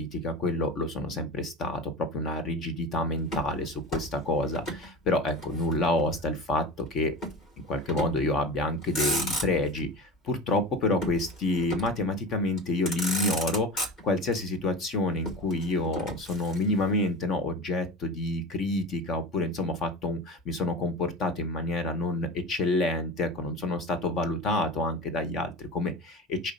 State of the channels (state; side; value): normal; both; correlation 0.30